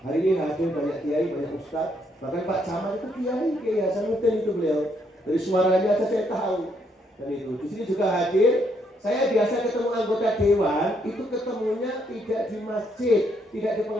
Hari ini hadir banyak kiai, banyak ustaz, bahkan Pak Camat itu kiai Hasanuddin itu beliau. Dari suaranya aja saya tahu. Dan itu di sini juga hadir. Saya biasa ketemu anggota dewan, itu ketemunya tidak di masjid, tidak di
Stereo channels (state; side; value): normal; both; correlation 0.73